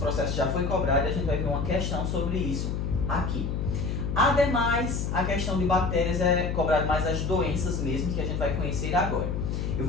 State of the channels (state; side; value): noise; left; hum, 1 dB below the sound